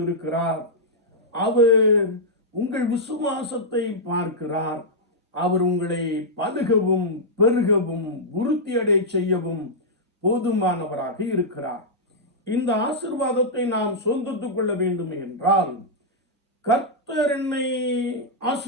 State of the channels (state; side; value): normal; both; correlation -0.08